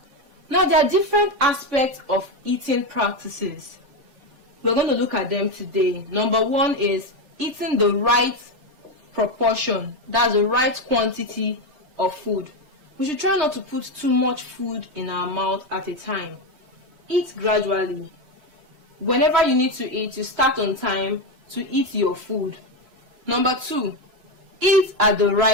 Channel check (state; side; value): late; left; 7.6 ms